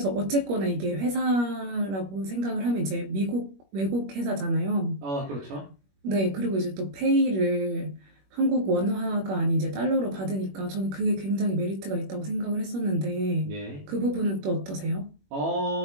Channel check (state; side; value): late; left; 21 ms